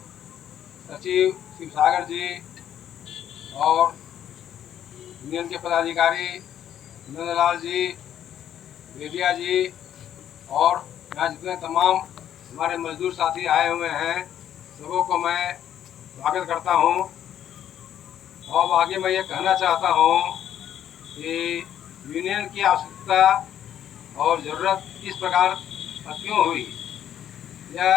सचिव शिवसागर जी और यूनियन के पदाधिकारी नंदलाल जी, बेदिया जी और यहाँ जितने तमाम हमारे मजदूर साथी आए हुए हैं, सबों को मैं स्वागत करता हूँ। और आगे मैं ये कहना चाहता हूँ कि यूनियन की आवश्यकता और ज़रूरत किस प्रकार क्यों हुई।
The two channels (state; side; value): quieter; right; 10.4 dB